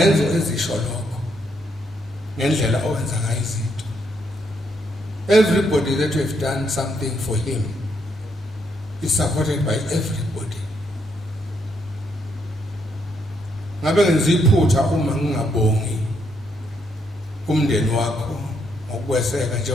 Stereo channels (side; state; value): both; normal; correlation 0.75